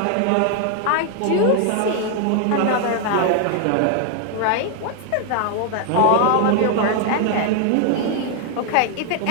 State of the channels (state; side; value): different; both; correlation 0.00